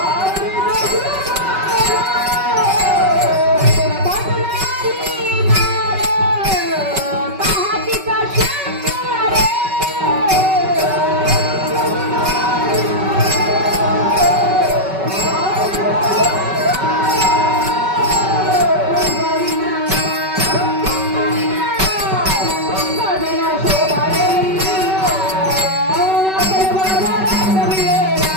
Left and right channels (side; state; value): left; late; 5.2 ms